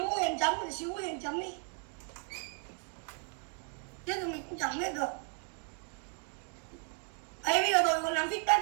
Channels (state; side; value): quieter; left; 39.9 dB